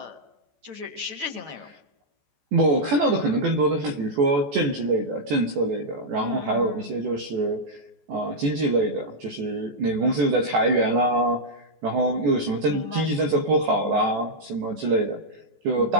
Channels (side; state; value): left; late; 14 ms